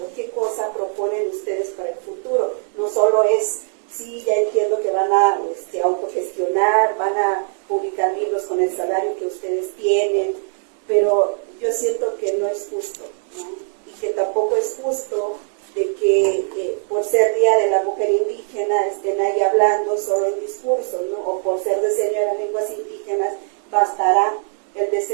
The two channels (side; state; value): left; silent; 65 dB below the other